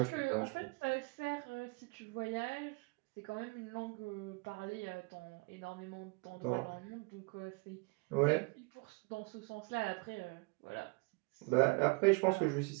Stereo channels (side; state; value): left; quieter; 30.5 dB